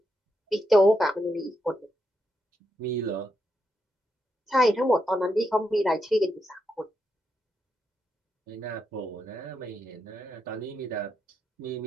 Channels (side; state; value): both; normal; correlation 0.83